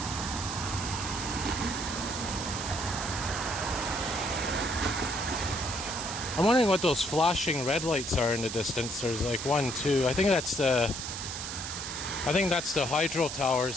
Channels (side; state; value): right; noise; hiss, 6 dB below the sound